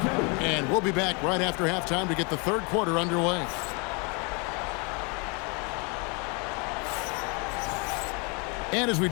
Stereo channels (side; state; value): right; quieter; 32.3 dB